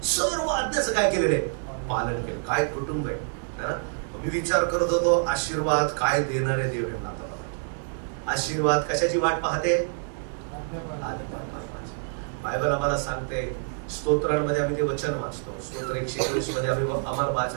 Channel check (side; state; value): left; silent; 60 dB below the other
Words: सर्व आज्ञाचं काय केलेलं आहे, पालन केलं. काय कुटुंब आहे. मी विचार करत होतो आशीर्वाद काय देणारे देव आहे. आशीर्वाद कशाची वाट पाहते, बायबल आम्हाला सांगते. स्तोत्रांमध्ये आम्ही ते वचन वाचतो, स्तोत्र 121 मध्ये आम्ही आम्हाला